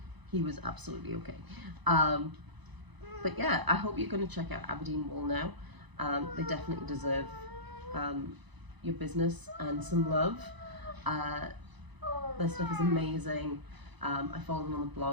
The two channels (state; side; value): late; left; 1.0 ms